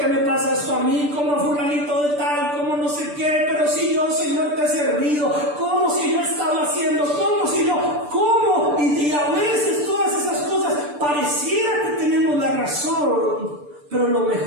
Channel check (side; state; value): left; late; 6.8 ms